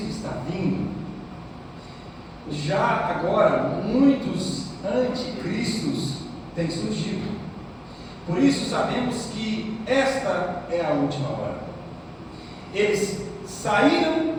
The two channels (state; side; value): identical; both; correlation 1.00